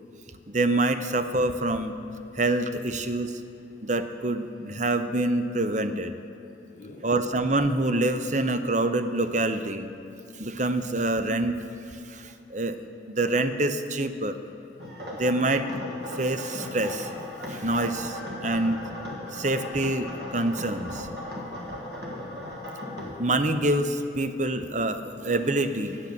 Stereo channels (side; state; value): both; normal; correlation 0.39